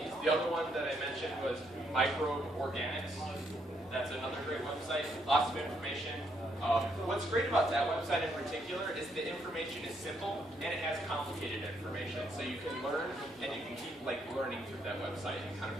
The other one that I mentioned was Microbe Organics. That's another great website. Lots of information. What's great about that website in particular is the information is simple and it has complicated information. So you can learn and you can keep like learning through that website and kind of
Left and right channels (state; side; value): normal; both; correlation 0.74